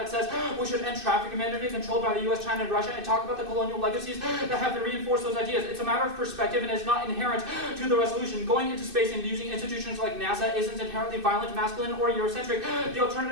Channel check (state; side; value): late; left; 2.6 ms